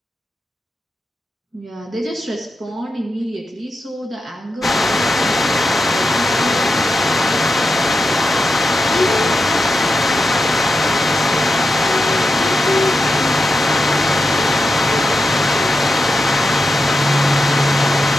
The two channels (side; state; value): both; normal; correlation 0.88